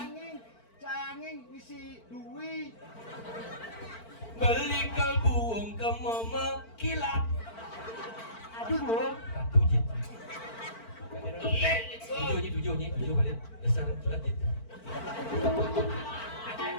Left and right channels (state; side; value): late; right; 4.5 ms